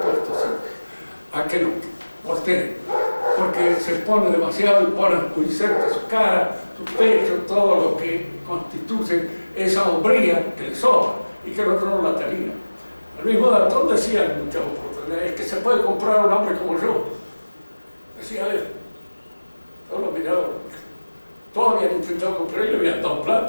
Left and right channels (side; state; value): both; inverted; correlation -1.00